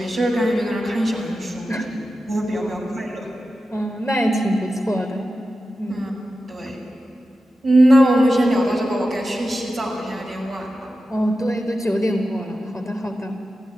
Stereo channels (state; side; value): normal; both; correlation 0.92